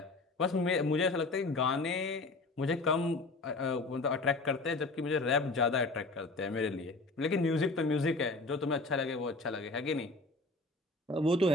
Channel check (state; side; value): quieter; right; 3.2 dB